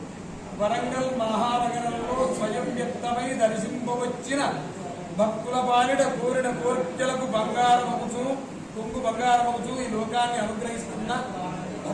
వరంగల్ మహానగరంలో స్వయం వ్యక్తమై దర్శింపవచ్చిన భక్తుల బాలిడ కోరిన కోర్కెలకు బంగారమవుచు కొంగు బంగారమవుచు ఈ లోకాన్ని అనుగ్రహిస్తున్న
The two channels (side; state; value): both; identical; correlation 1.00